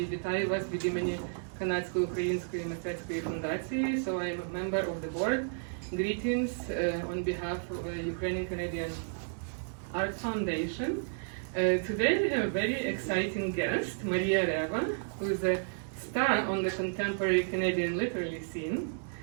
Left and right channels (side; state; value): left; silent; 56 dB below the other